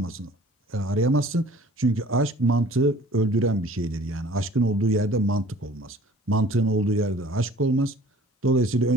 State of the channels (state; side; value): normal; both; correlation 0.50